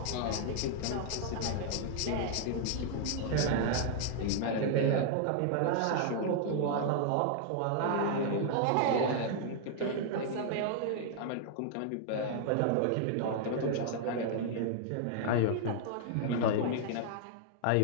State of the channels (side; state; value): both; different; correlation -0.01